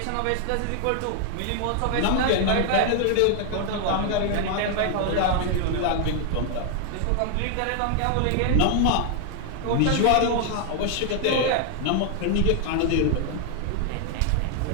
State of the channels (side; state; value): both; different; correlation 0.00